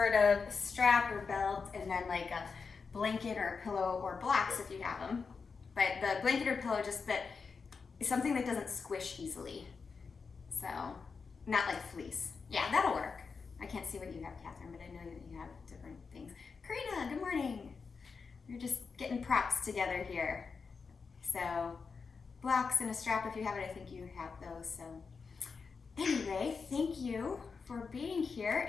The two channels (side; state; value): right; quieter; 5.1 dB